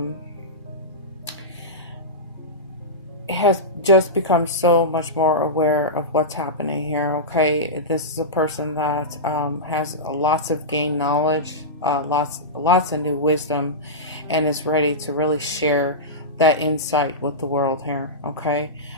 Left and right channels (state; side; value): normal; both; correlation -0.15